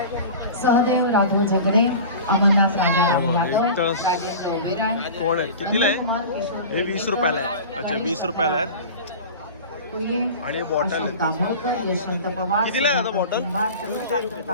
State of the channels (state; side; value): inverted; both; correlation -0.35